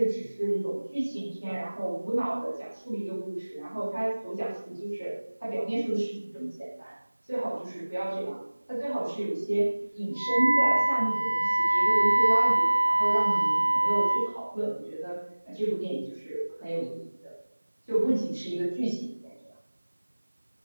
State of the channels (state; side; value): inverted; both; correlation -1.00